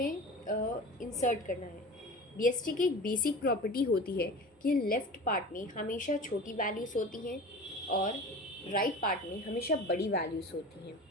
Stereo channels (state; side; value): normal; both; correlation 0.35